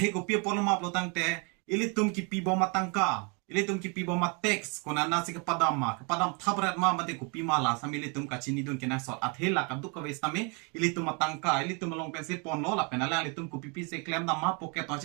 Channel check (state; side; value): quieter; left; 32.6 dB